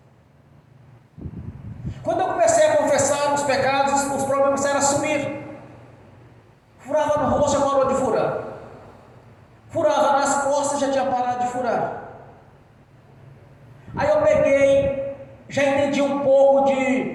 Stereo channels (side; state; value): both; identical; correlation 1.00